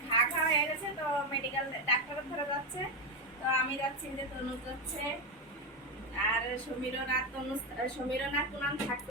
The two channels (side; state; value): both; normal; correlation 0.10